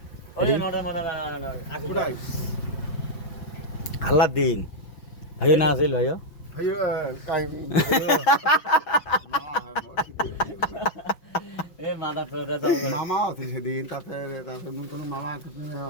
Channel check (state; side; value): late; right; 6.2 ms